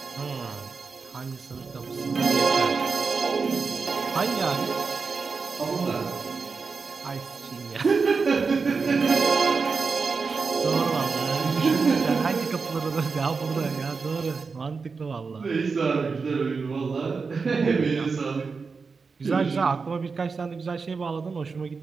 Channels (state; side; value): quieter; left; 4.8 dB